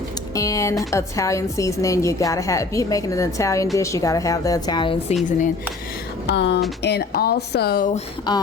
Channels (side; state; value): right; quieter; 3.6 dB